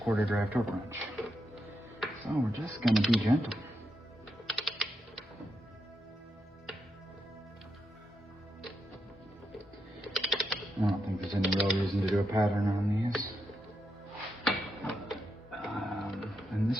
quarter drive torque wrench. So we're just going to be gentle. I don't think there's any real reason to do a pattern on these. And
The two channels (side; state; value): both; normal; correlation 0.83